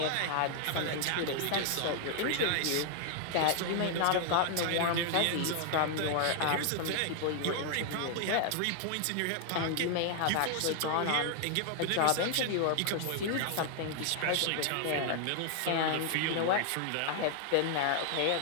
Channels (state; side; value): different; both; correlation 0.00